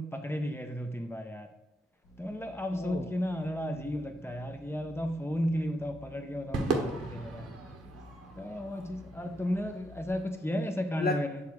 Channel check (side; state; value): both; normal; correlation 0.80